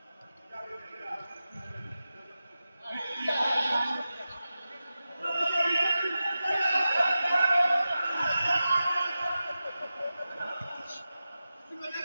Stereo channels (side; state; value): both; inverted; correlation -0.93